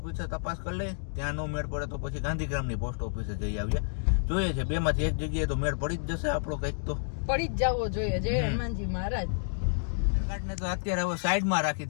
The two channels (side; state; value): right; silent; digital silence